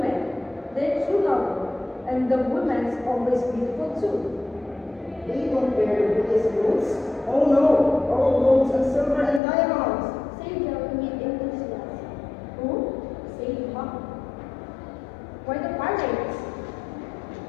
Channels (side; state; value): right; drops out; at 9.4 s